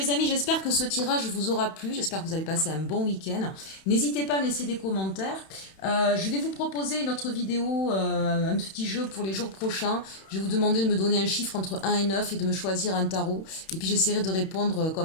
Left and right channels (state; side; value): late; right; 31 ms